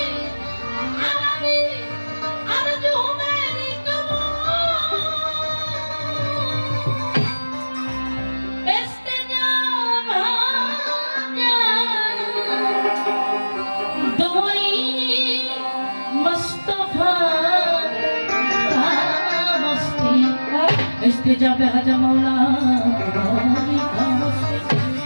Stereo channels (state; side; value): inverted; both; correlation -1.00